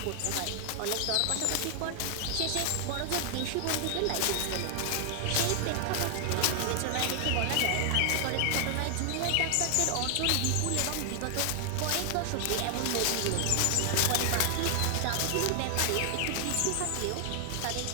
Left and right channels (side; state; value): both; different; correlation 0.00